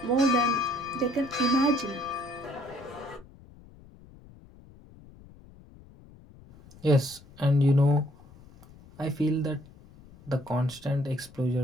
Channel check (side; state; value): left; noise; rumble, 23 dB below the sound